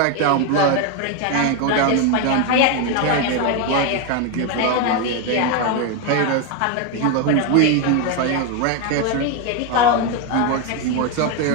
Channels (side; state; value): both; different; correlation 0.02